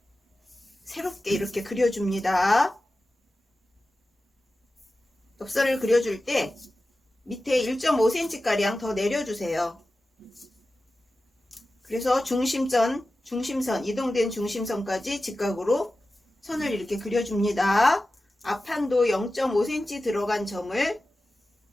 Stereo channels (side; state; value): both; normal; correlation 0.94